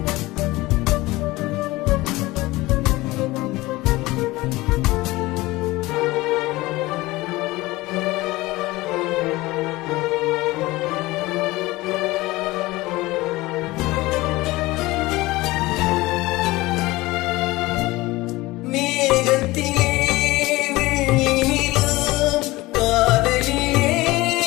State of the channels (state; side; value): quieter; right; 19.9 dB